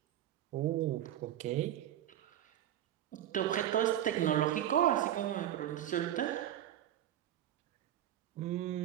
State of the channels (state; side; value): quieter; left; 11.9 dB